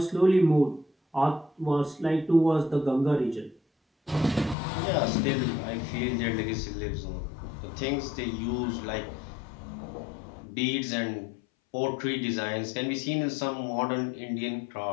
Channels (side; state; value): right; drops out; at 4.5 s